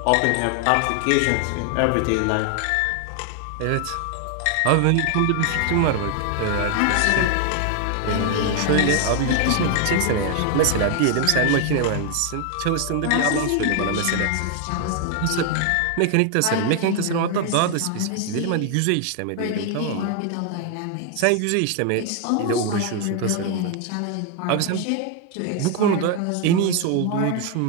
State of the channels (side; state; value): both; different; correlation 0.00